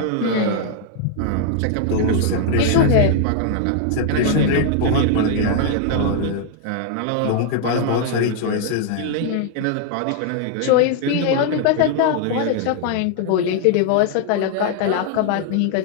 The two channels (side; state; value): both; different; correlation 0.00